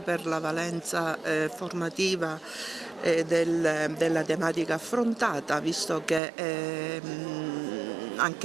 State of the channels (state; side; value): drops out; left; at 6.2 s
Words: la valenza formativa della tematica affrontata, visto che